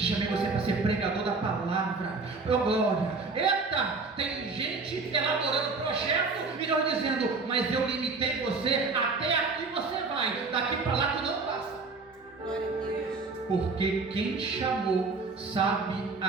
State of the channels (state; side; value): quieter; left; 4.0 dB